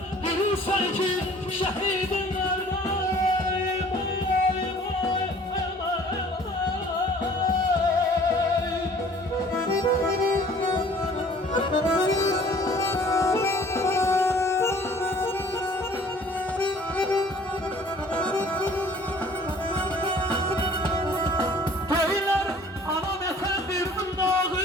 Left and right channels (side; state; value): both; normal; correlation 0.52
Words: bilirsen ki şehidim nerede.